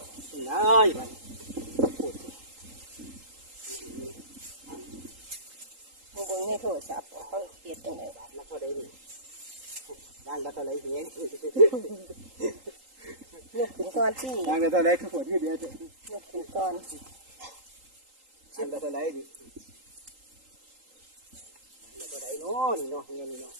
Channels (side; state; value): left; late; 3.8 ms